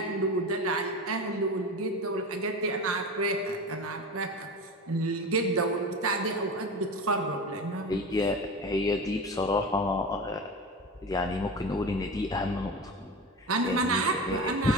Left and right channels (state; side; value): normal; both; correlation 0.28